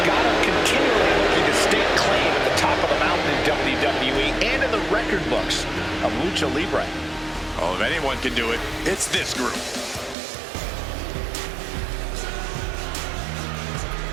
continually looking to stake claim at the top of the mountain in WWE and in the record books of Lucha Libre. Oh, if anyone can do it, it's this group.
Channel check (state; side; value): drops out; left; at 10.2 s